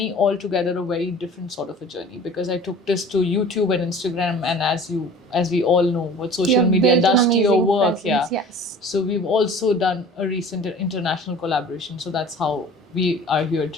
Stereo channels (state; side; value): normal; both; correlation 0.44